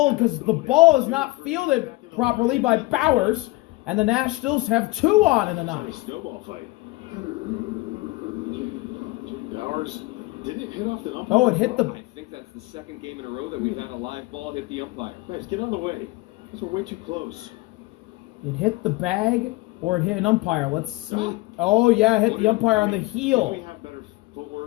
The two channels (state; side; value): quieter; right; 20.9 dB